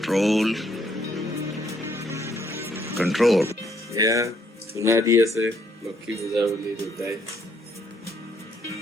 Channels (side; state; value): both; normal; correlation 0.69